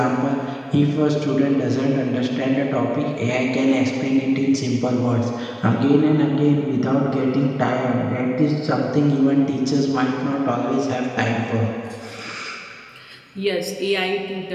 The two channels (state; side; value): identical; both; correlation 1.00